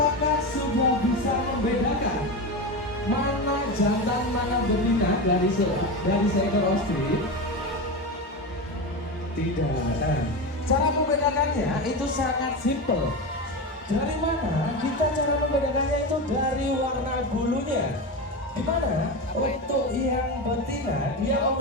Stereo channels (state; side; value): normal; both; correlation 0.20